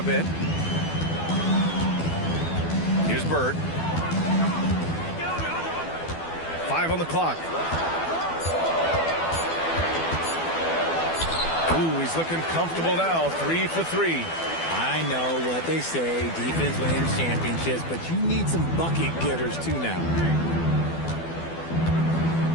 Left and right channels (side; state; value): right; late; 12 ms